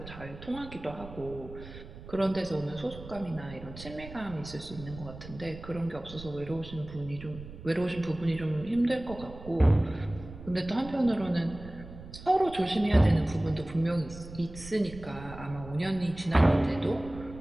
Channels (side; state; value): right; noise; rumble, 14 dB below the sound